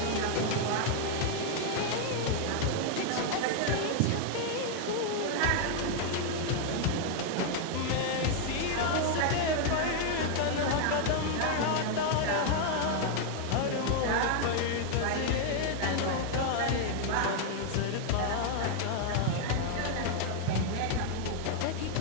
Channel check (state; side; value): different; both; correlation 0.00